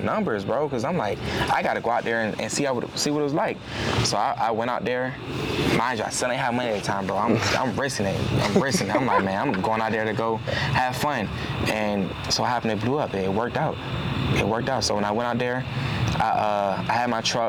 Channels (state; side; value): identical; both; correlation 1.00